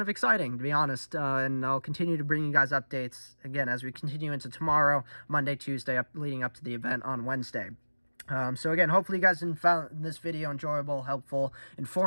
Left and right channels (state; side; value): inverted; both; correlation -1.00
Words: of exciting, to be honest. And I'll continue to bring you guys updates again as we continue into tomorrow, Monday, Tuesday, leading up to the event on Wednesday. So again, hopefully you guys found this video enjoyable, helpful,